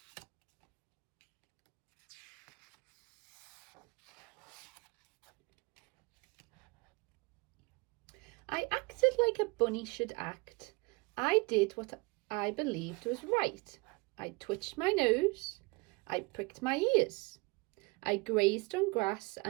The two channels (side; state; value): left; quieter; 27.0 dB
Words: I acted like a bunny should act. I did what I believed was right. I twitched my nose. I pricked my ears. I grazed on grass